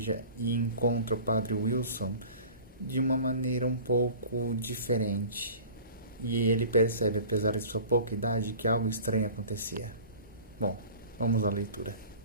e encontra o padre Wilson de uma maneira um pouco diferente. E ele percebe, apesar de sua pouca idade, que algo estranho acontecia. Bom, vamos à leitura.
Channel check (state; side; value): inverted; both; correlation -0.42